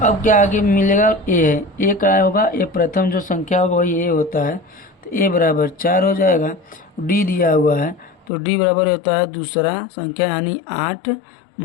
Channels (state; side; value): drops out; right; at 8.3 s